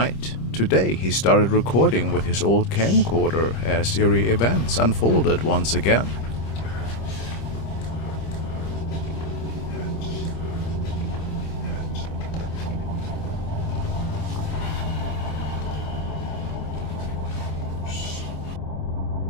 Today he started recording with his old camcorder as eerie events unfolded once again.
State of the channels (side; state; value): right; late; 26 ms